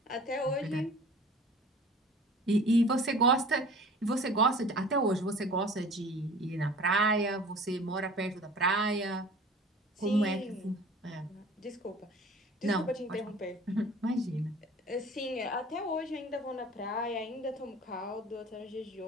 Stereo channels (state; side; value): normal; both; correlation 0.45